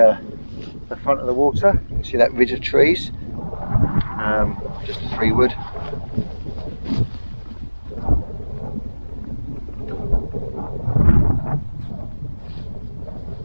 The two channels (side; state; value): both; inverted; correlation -1.00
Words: the front of the water. You can see that ridge of trees, just a 3 wood.